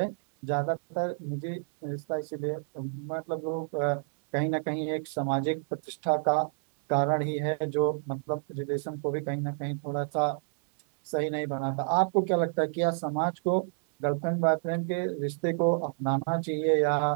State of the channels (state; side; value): silent; left; 58 dB below the other